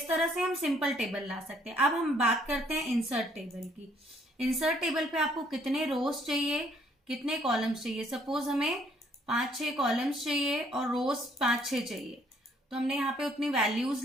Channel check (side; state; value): both; normal; correlation 0.65